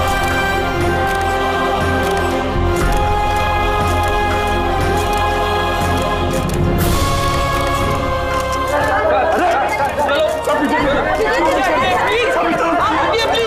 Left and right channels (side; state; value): both; identical; correlation 1.00